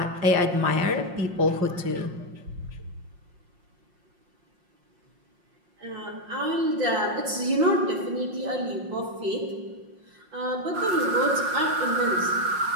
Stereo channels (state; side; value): late; left; 5.6 ms